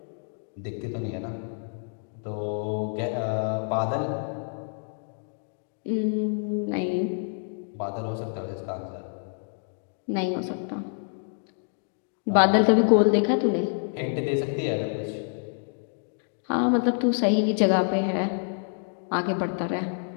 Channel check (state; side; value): silent; right; 60 dB below the other